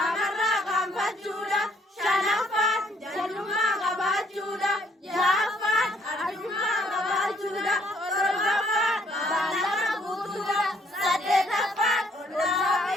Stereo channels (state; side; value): normal; both; correlation 0.66